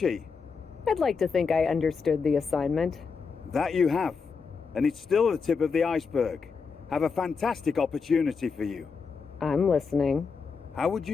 I'd like to think I understood the assignment. That you have. And it's still the tip of the iceberg. Have a fantastic opportunity for you. I'm listening. How would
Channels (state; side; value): quieter; right; 5.3 dB